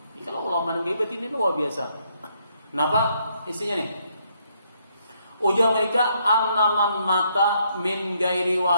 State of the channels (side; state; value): both; inverted; correlation -0.72